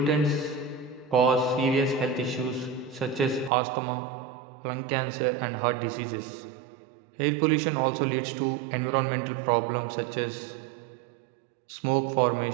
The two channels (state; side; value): drops out; left; at 3.5 s